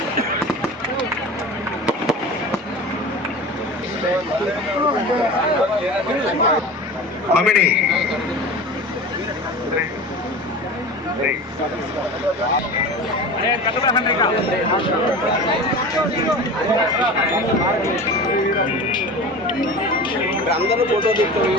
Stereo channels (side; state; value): both; normal; correlation 0.33